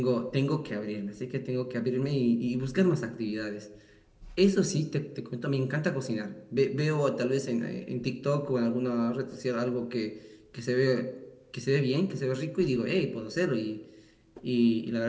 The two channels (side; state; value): both; identical; correlation 1.00